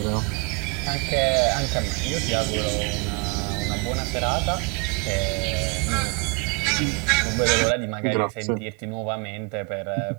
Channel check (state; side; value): quieter; left; 31.3 dB